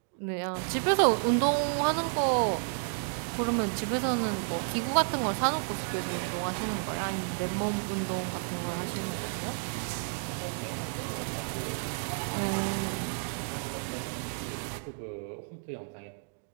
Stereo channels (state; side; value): silent; left; digital silence